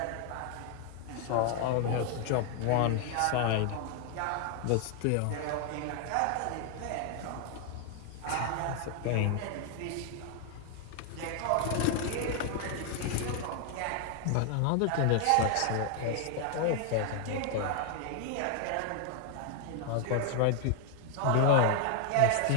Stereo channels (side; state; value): both; different; correlation 0.00